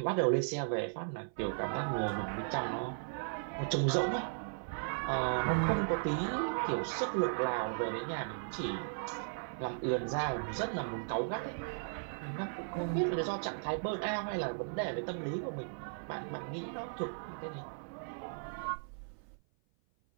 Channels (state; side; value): silent; left; 53 dB below the other